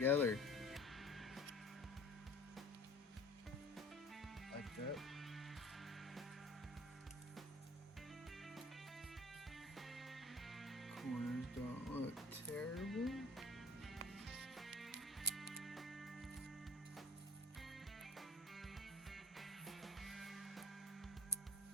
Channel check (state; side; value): normal; both; correlation 0.45